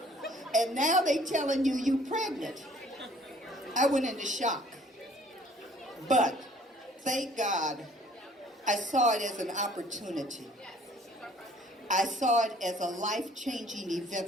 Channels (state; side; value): normal; both; correlation 0.56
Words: and now they telling you you pregnant. I went into shock. But thank God, I saw it as an opportunity. I saw it as a life-changing event